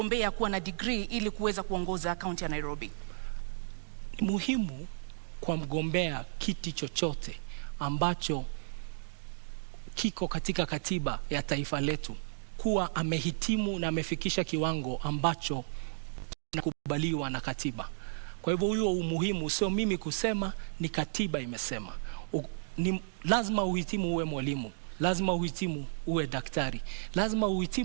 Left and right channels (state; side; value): silent; left; digital silence